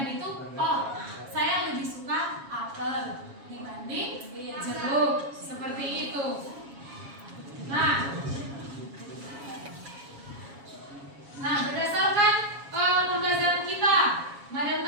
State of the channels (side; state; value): left; late; 7.2 ms